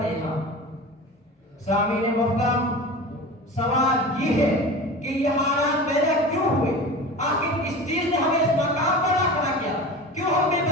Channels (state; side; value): normal; both; correlation 0.33